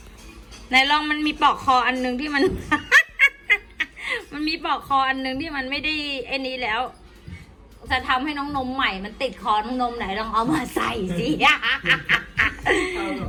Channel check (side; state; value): both; identical; correlation 1.00